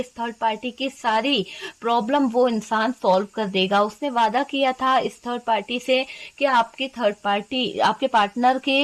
थर्ड पार्टी की सारी प्रॉब्लम वो इंसान सॉल्व कर देगा। उसने वादा किया था इस थर्ड पार्टी से कि आपकी थर्ड पार्टी आपके पार्टनर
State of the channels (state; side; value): identical; both; correlation 1.00